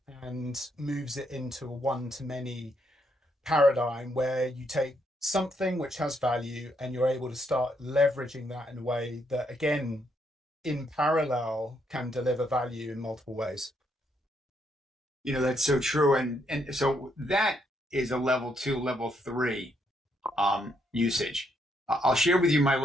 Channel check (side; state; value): both; normal; correlation 0.75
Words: and moves it into a one to many paradigm where you take something which has value and you're able to start leveraging that in a way that, again, in parallel, can deliver value in multiple ways. That's so true. And so that is a level 2, level 3 usage. I'll share with you my